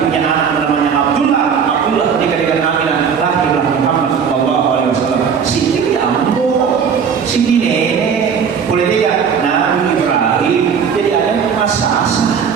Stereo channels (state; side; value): quieter; left; 6.8 dB